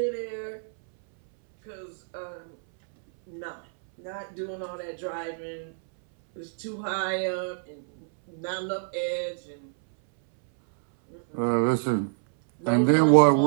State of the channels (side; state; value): left; silent; 60 dB below the other